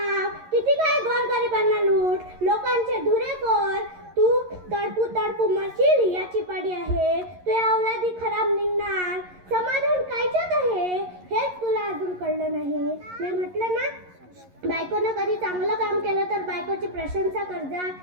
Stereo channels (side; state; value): left; late; 11 ms